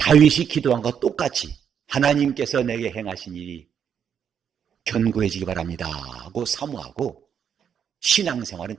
기도한 것과 똑같이 하나님께서 내게 행하신 일이 견고해지기 바랍니다 하고 사모하고, 신앙생활은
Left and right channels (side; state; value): left; quieter; 8.0 dB